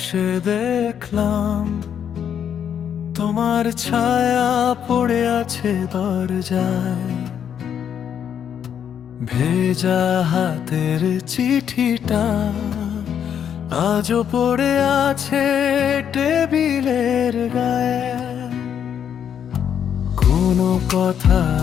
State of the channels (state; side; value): quieter; right; 8.6 dB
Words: দেখলাম তোমার ছায়া পড়ে আছে দরজায়। ভেজা হাতের চিঠিটা আজও পড়ে আছে টেবিলের গায়ে। কোনো কথা